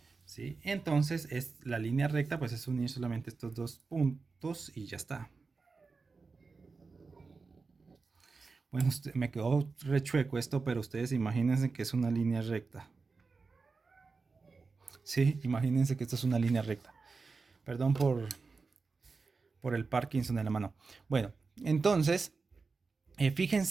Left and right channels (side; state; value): left; quieter; 4.3 dB